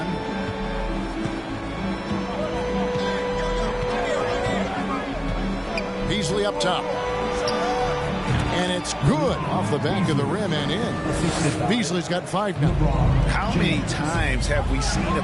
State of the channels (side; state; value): both; identical; correlation 1.00